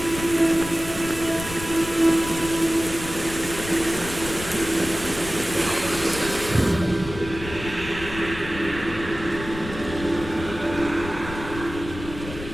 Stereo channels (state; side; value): noise; left; rumble, 11 dB below the sound